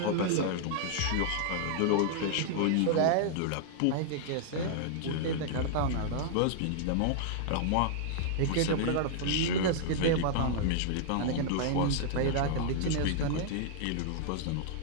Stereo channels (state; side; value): different; both; correlation -0.01